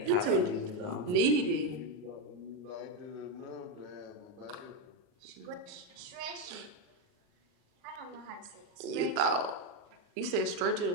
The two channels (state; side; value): late; left; 39 ms